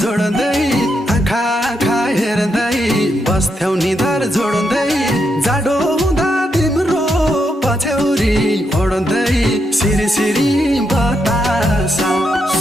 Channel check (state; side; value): normal; both; correlation 0.81